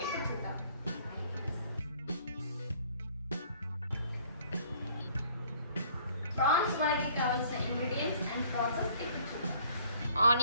ఇప్పుడు చూద్దాం. ప్రాన్స్ వడకి కావాల్సిన ఇంగ్రీడియంట్స్ అండ్ ప్రాసెస్ ఇప్పుడు చూద్దాం.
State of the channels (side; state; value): both; inverted; correlation -0.58